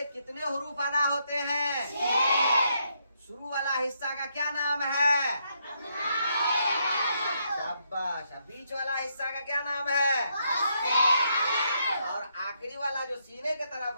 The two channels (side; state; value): both; inverted; correlation -0.77